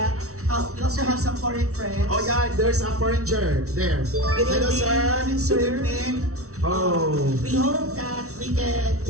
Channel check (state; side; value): late; left; 0.64 ms